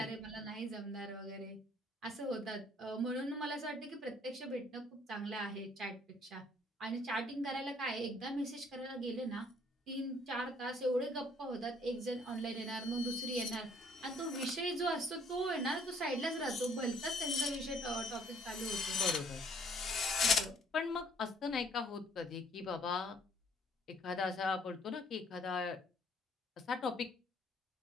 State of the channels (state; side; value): normal; both; correlation 0.62